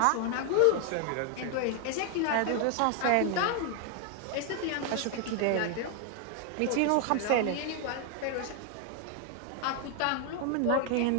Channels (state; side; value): different; both; correlation 0.00